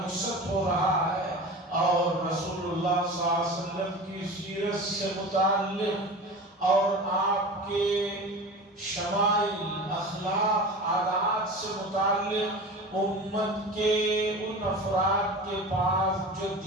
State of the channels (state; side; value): normal; both; correlation 0.33